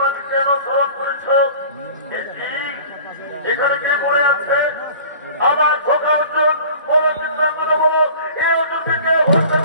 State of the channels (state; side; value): inverted; both; correlation -0.43